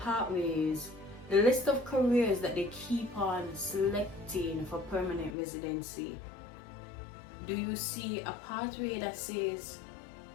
the list of careers that they keep on selecting for permanent residency, do you see a pathway that says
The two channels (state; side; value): drops out; right; at 5.3 s